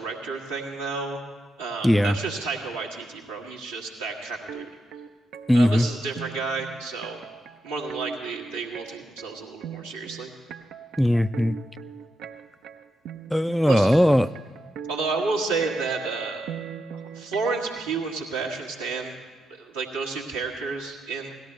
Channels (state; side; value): normal; both; correlation 0.85